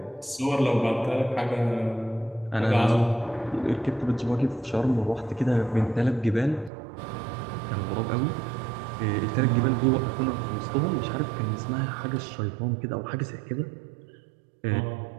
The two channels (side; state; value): left; drops out; at 6.7 s